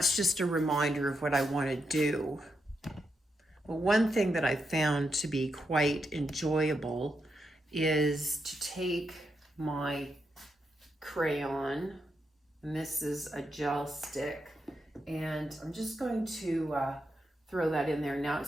just a reminder of what I want to do. Well, one thing that I found to be quite enjoyable is to take my crayon, and this is a gel stick, and I'm just going to throw that in there. Now,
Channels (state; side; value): normal; both; correlation 0.84